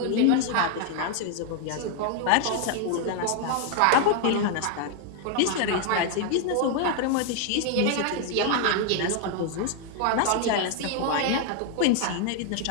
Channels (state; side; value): different; both; correlation 0.00